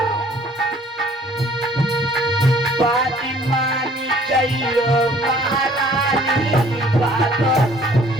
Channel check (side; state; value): both; normal; correlation 0.57